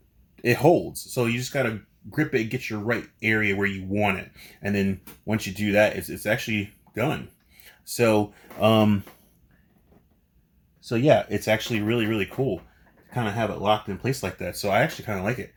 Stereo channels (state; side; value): identical; both; correlation 1.00